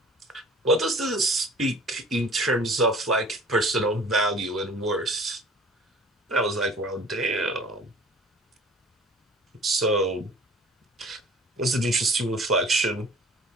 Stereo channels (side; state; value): both; normal; correlation 0.48